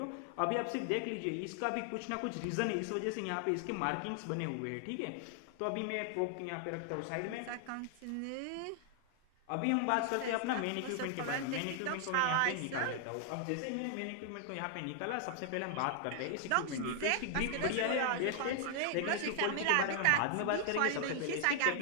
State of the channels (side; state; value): both; different; correlation 0.00